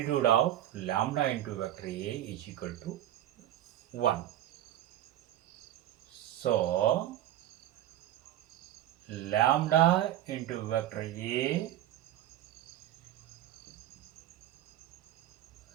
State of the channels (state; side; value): quieter; left; 12.7 dB